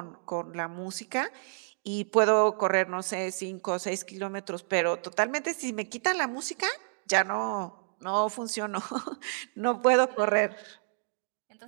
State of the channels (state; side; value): silent; left; digital silence